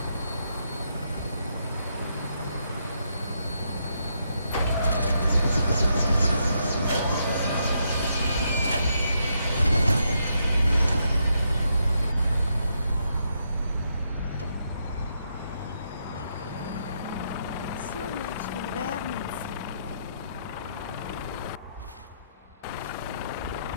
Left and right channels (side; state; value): both; inverted; correlation -0.78